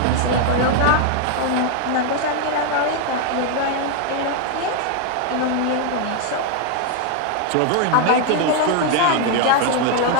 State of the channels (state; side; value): different; both; correlation 0.00